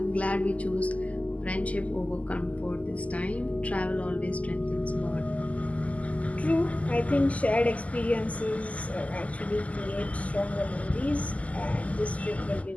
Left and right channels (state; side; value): late; right; 0.070 ms